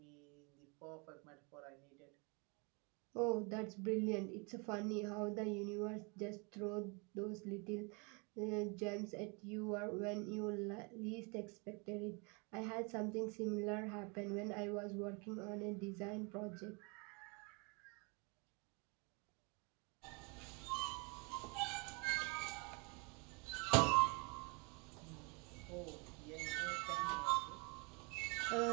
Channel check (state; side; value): quieter; left; 31.7 dB